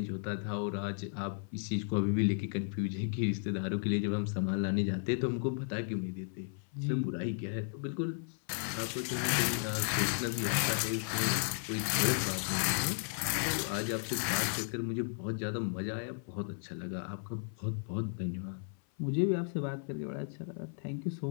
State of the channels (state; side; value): silent; right; 55 dB below the other